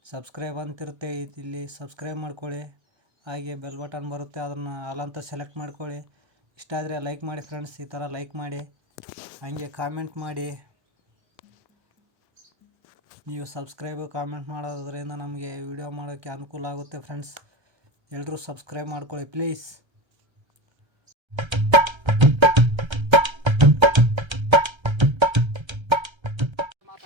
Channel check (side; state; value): left; late; 1.3 ms